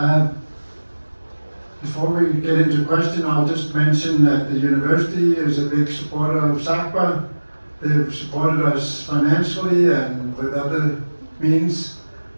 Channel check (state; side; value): inverted; both; correlation -1.00